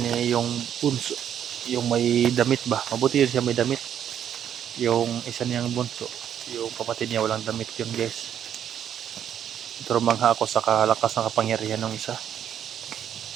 yung bunso, yung may damit ba? Mabuti yun siya may damit. Yung isa niyang bunso, yung kapatid niya walang damit yun guys. Pero mangha ako sa kalakas ng kapangyarihan ng isa.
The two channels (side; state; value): left; quieter; 9.5 dB